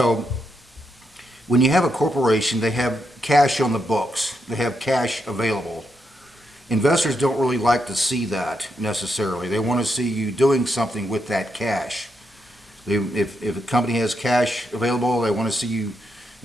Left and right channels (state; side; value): normal; both; correlation 0.82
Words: when you have a corporation, they have cash on the books. They have cash available. Investors don't really like to see that necessarily. They want to see you doing something with that cash. If a company has cash available, they want to see you,